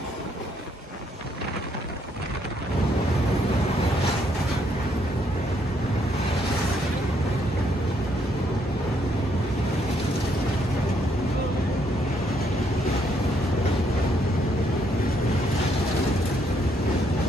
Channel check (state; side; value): normal; both; correlation 0.72